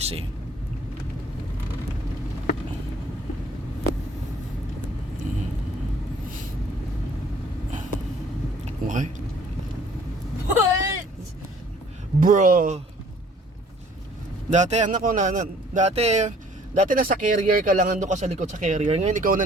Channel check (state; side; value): normal; both; correlation 0.56